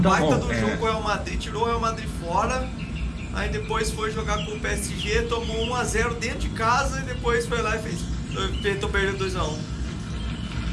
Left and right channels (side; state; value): both; identical; correlation 1.00